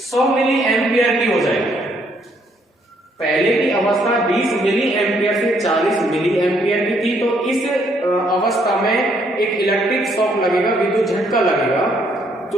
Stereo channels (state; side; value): normal; both; correlation 0.69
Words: मिली एम्पियर की हो जाएगी। पहले की अवस्था 20 मिली एम्पियर से 40 मिली एम्पियर की थी, तो इस अवस्था में एक इलेक्ट्रिक शॉक लगेगा, विद्युत झटका लगेगा,